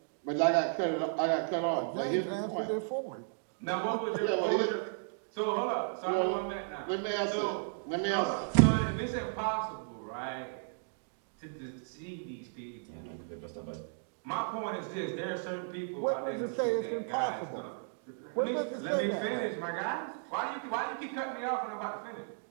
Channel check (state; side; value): silent; left; digital silence